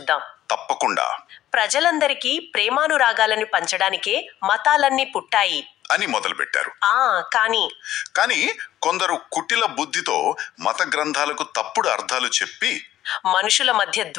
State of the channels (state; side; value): quieter; right; 13.1 dB